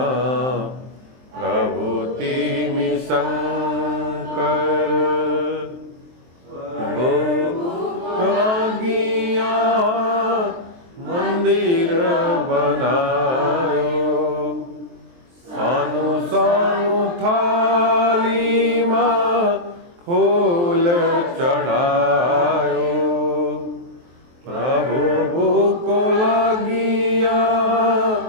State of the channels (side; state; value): left; late; 23 ms